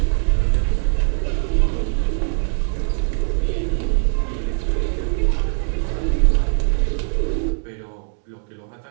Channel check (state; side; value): silent; left; 57 dB below the other